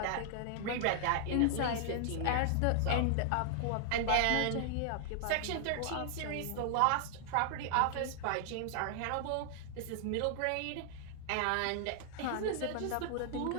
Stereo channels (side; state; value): both; different; correlation 0.00